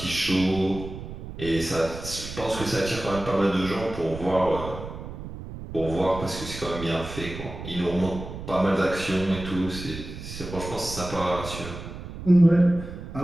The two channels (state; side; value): noise; right; rumble, 10 dB below the sound